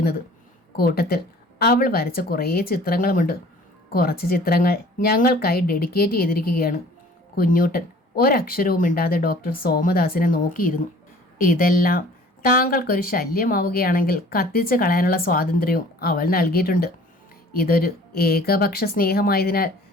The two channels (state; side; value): normal; both; correlation 0.50